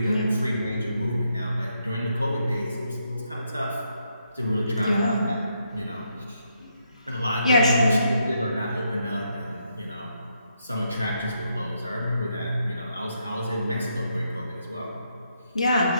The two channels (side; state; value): both; inverted; correlation -0.79